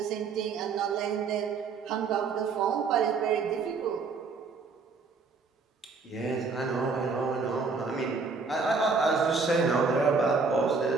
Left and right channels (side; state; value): left; quieter; 4.7 dB